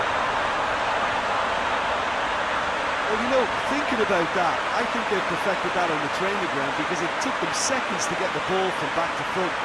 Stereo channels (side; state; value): both; identical; correlation 1.00